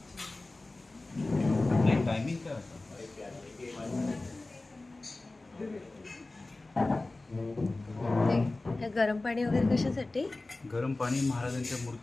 टायमिंग काय होतं? गरम पाणी वगैरे कशासाठी? गरम पाणी महाराजांच्या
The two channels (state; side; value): quieter; right; 3.1 dB